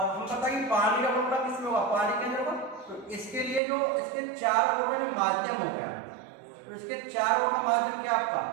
हम बताइए पानी का बुलबुला किसमें होगा, पानी के अंदर होगा। तो इसके लिए जो इसके चारों ओर का जो माध्यम हो गया, तो इसके चारों ओर का माध्यम क्या आपका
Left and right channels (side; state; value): left; drops out; at 3.6 s